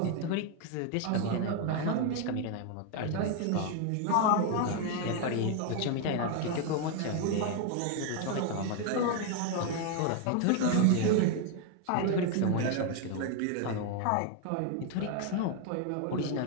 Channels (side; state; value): both; different; correlation 0.01